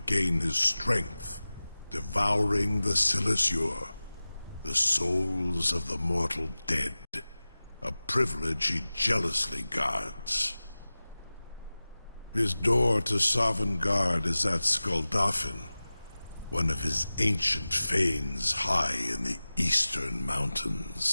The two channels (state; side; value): inverted; both; correlation -0.97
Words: his strength, devouring the Silesure, the souls of the mortal dead, a privilege he jealously guards. His door to Sovngarde is at Skuldafn, one of his ancient fanes high in the eastern